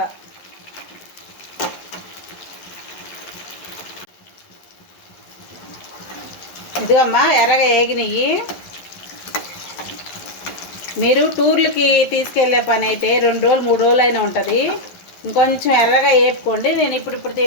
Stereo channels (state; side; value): late; right; 11 ms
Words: ఇదిగమ్మా ఎర్రగా వేగినవి. మీరు టూర్లకి తీసుకెళ్ళే పని అయితే 2 రోజులు 3 రోజులు అయినా ఉంటుంది. ఇంకొంచెం ఎర్రగా వేపుకోండి. నేను ఇప్పుడు